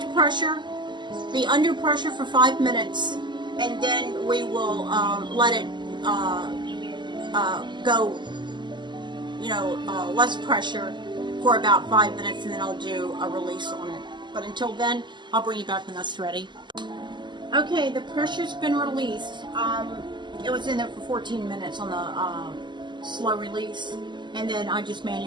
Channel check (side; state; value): left; late; 0.22 ms